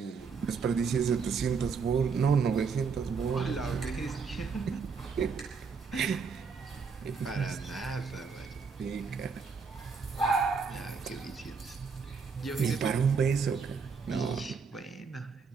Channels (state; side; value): quieter; left; 5.4 dB